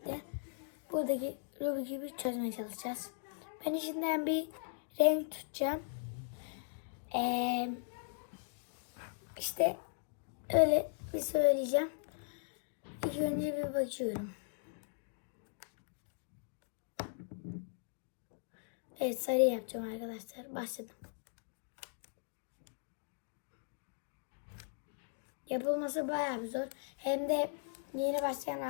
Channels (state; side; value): silent; right; digital silence